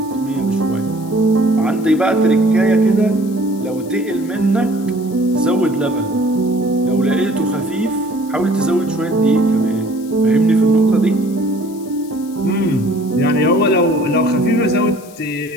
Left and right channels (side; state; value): left; noise; hiss, 22 dB below the sound